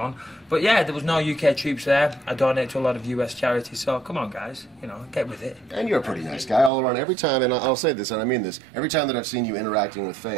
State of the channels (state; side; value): drops out; left; at 6.7 s